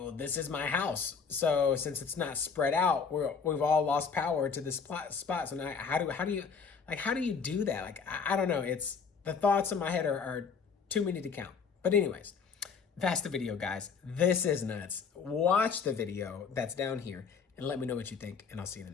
this is my house. So since it's not spread out, we've all lost power to this spot. So now how do you do that? Like, I don't know. It's, the thoughts in my head are too many to count. But anyways, that's the video, guys. This is nuts. Watch the video that's down here and let me know what you think, and I'll see you in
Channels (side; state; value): right; quieter; 5.8 dB